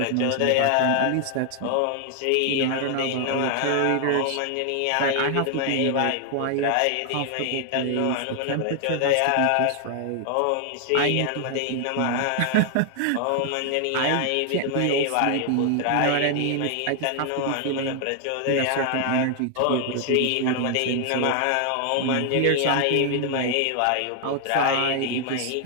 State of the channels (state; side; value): different; both; correlation 0.00